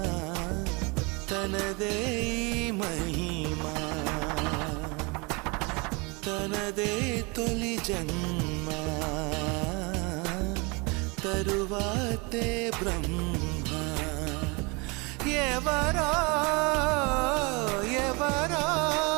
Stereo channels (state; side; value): quieter; left; 28.8 dB